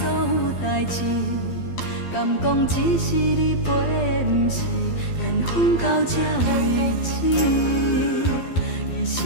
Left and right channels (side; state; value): right; late; 12 ms